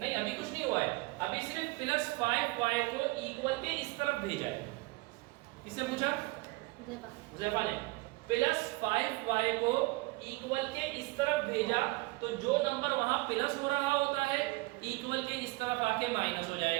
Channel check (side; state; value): left; quieter; 23.1 dB